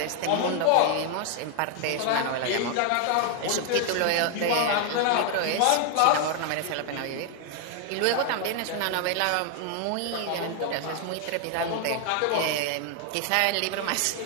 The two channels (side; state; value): both; different; correlation 0.00